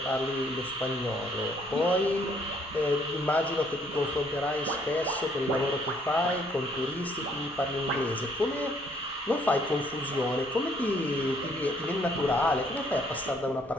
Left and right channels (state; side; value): normal; both; correlation 0.65